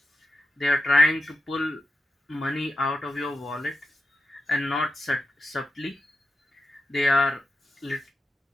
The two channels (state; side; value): normal; both; correlation 0.88